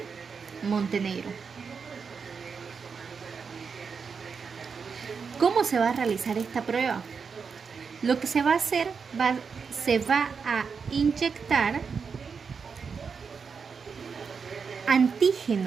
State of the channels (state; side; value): quieter; left; 5.7 dB